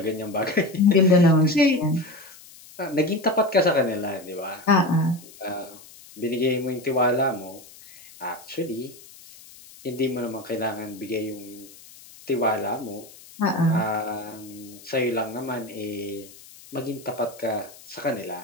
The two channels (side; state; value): left; noise; hiss, 21 dB below the sound